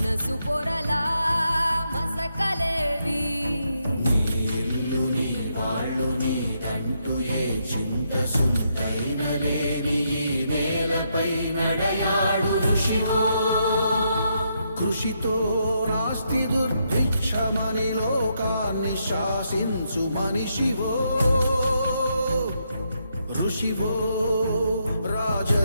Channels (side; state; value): both; inverted; correlation -0.79